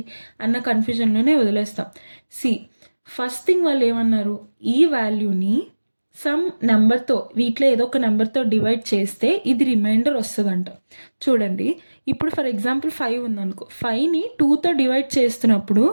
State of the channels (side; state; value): both; inverted; correlation -1.00